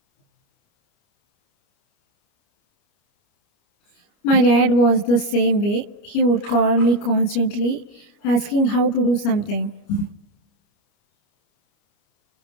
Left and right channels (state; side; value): late; right; 29 ms